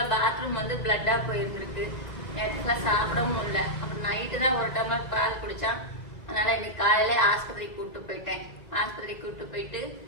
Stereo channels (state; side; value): late; right; 2.0 ms